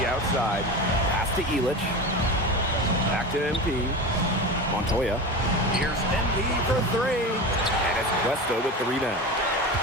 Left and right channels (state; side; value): normal; both; correlation 0.27